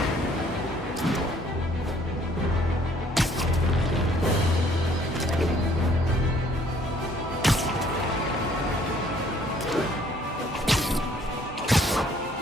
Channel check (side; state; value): both; normal; correlation 0.61